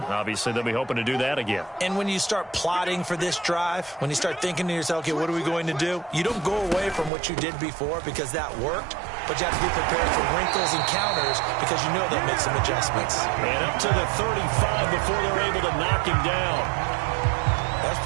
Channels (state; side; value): drops out; left; at 7.1 s